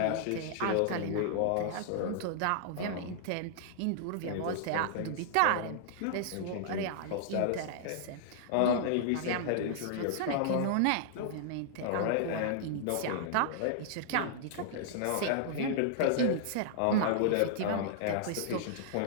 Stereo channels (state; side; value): different; both; correlation -0.01